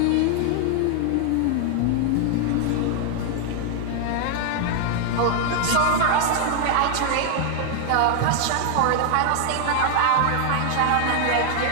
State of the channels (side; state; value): both; different; correlation 0.00